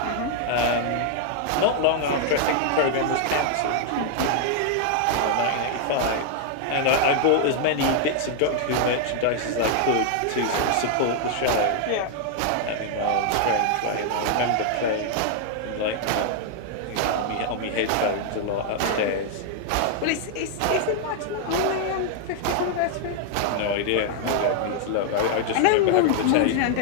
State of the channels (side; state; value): both; different; correlation 0.00